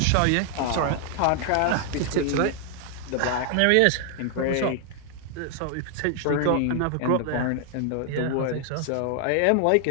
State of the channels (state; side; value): different; both; correlation 0.00